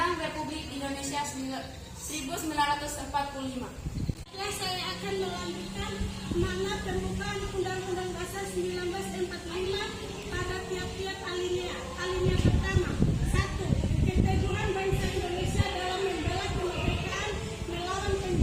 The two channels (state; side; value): identical; both; correlation 1.00